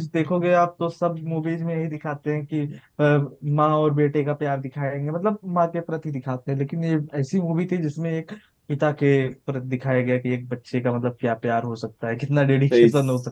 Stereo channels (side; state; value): both; identical; correlation 1.00